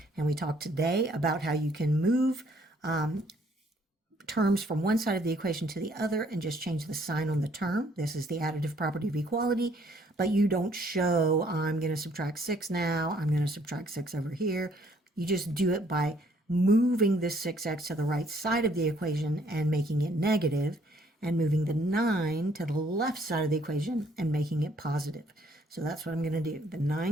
And we talked today about how you can move terms from one side of the equation to the other and just change the sign on the term. This is the additive property of equality, but you don't show, I'm going to subtract 6 now, I'm going to subtract 6 over here. You just do it by moving this 6x to the right side of the equation and making it negative, and moving the 9 to the left side of the equation and making it positive. So that's what I'm going to do. The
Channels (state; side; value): normal; both; correlation 0.64